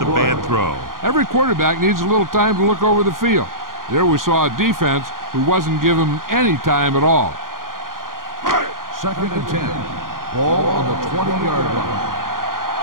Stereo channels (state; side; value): late; left; 0.91 ms